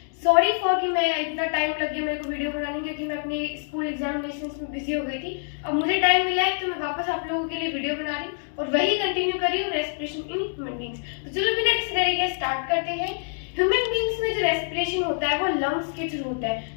Sorry for कि मैं इतना टाइम लग गया मेरे को वीडियो बनाने, क्योंकि मैं अपने स्कूल एग्जामिनेशन में बिजी हो गई थी। अब मुझे टाइम मिला है तो मैं वापस आप लोगों के लिए वीडियो बना रही हूँ और वही कंटिन्यू कर रही हूँ, रेस्पिरेशन इन ह्यूमन बींग्स। तो चलो बिना किसी तरीके स्टार्ट करते हैं। ह्यूमन बींग्स में जो रेस्पिरेशन होता है वो लंग्स के थ्रू होता है।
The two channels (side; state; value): right; silent; digital silence